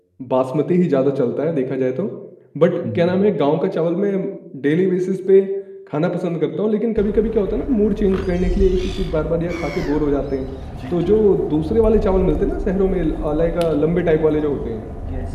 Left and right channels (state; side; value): identical; both; correlation 1.00